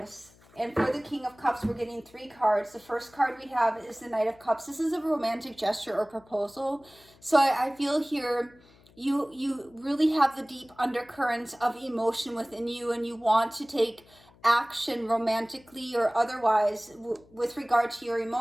And for the King of Cups, we're getting 3 cards. The first card we have is the Knight of Cups. This is a romantic gesture or proposal. So I feel here you really have the deep undercurrents of emotion within you, and you want to take action romantically or otherwise with regard to your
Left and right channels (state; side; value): noise; left; hum, 28 dB below the sound